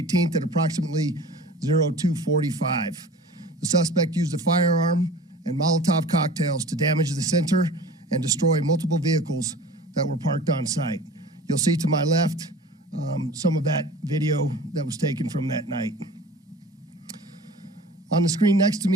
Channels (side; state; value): both; normal; correlation 0.42